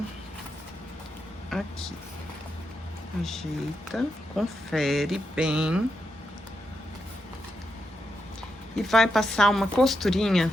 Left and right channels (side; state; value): both; normal; correlation 0.85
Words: aqui. Ajeita, confere bem. E vai passar uma costurinha